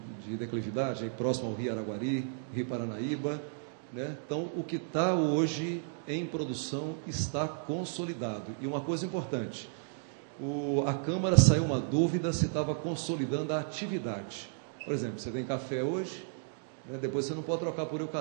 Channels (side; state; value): left; silent; digital silence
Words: declividade, aí próximo ao Rio Araguari, Rio Paranaíba, né? Então, o que está hoje em produção está consolidado. E uma coisa importante, a Câmara saiu uma dúvida se estava consolidando a atividade. Por exemplo, você tem café hoje, né? Depois você não pode trocar por